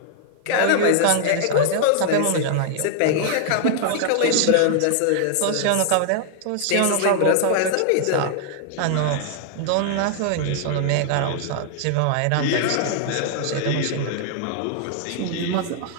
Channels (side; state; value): both; different; correlation 0.00